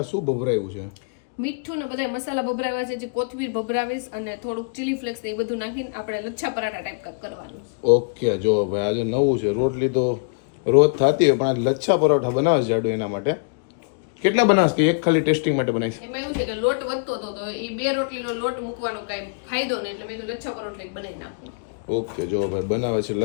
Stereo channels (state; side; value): quieter; right; 37.9 dB